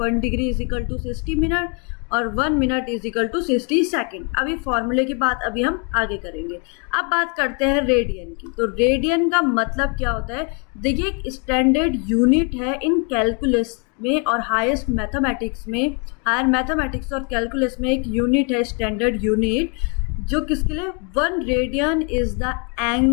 degree is equal to 60 minute और 1 minute is equal to 60 second. अभी फॉर्मूले की बात अभी हम आगे करेंगे। अब बात करते हैं रेडियन की। तो रेडियन का मतलब क्या होता है, देखिए एक स्टैंडर्ड यूनिट है इन कैलकुलस में और हाईएस्ट मैथमेटिक्स में, हायर मैथमेटिक्स और कैलकुलस में एक यूनिट है स्टैंडर्ड यूनिट, जो किसके लिए, 1 radian is the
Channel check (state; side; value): quieter; right; 35.8 dB